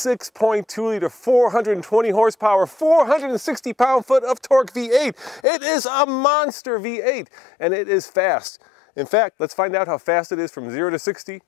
liter, 420 horsepower, 460 pound-foot of torque V8. It is a monster V8, and it is fast. In fact, let's find out how fast it is from 0 to 60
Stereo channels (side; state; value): right; drops out; at 5.4 s